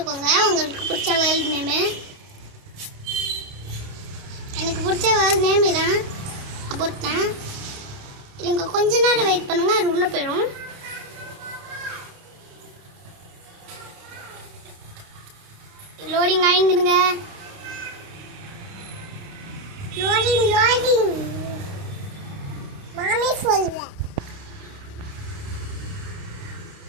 உங்களுக்கு பிடிச்ச வேர்ல்ட் நேம். எனக்கு பிடிச்ச வேர்ல்ட் நேம் இதான் போட்டேன். இதுங்க கொஞ்ச நேரம் வெயிட் பண்ணுங்க, அது உள்ள போயிடும். லோடிங் ஆயிடுங்க. லோடிங் மாமி சொல்ல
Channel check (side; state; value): left; late; 28 ms